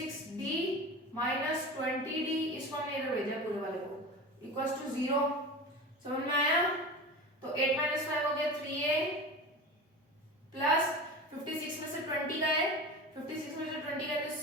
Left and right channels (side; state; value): both; normal; correlation 0.31